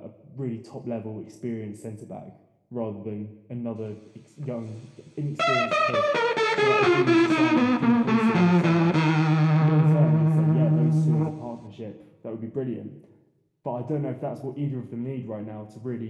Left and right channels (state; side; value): identical; both; correlation 1.00